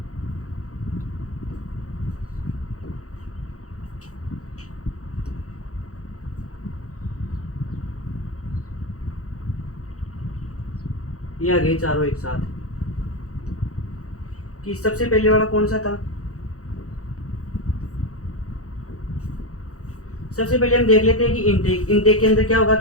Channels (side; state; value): right; late; 0.65 ms